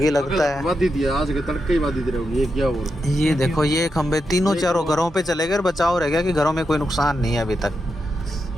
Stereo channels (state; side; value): normal; both; correlation 0.86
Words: लगता है। बाधित दिया आज के तड़के ही बाधित रहेगी। ये क्या हो रहा ये देखो ये खंबे तीनों चारों घरों पे चले गए, बचाव रह गया कि घरों में कोई नुकसान नहीं है अभी तक।